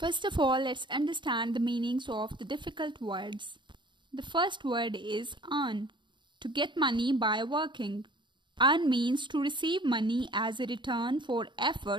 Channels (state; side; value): late; left; 0.23 ms